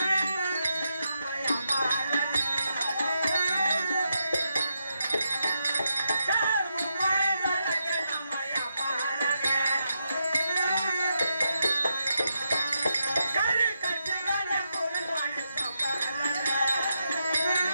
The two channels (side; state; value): both; inverted; correlation -0.83